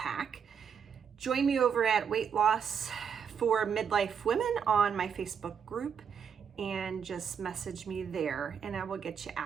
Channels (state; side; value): quieter; left; 7.2 dB